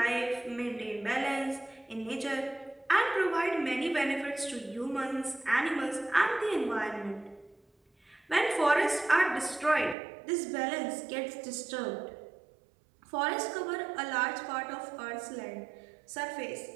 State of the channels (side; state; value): left; drops out; at 10.0 s